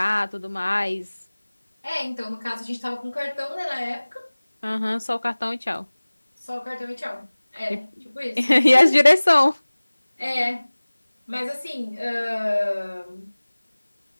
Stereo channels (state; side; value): inverted; both; correlation -1.00